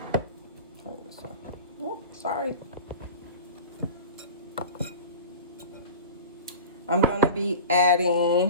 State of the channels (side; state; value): both; inverted; correlation -0.34